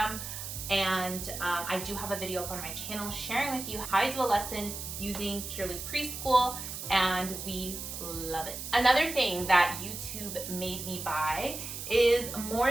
and I do have a video up on my channel sharing with you how I do a lesson using purely preschool, and we love it. Another thing that YouTube made me buy is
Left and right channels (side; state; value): right; noise; hiss, 7 dB below the sound